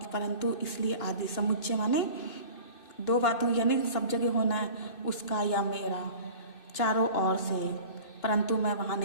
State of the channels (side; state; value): right; late; 2.6 ms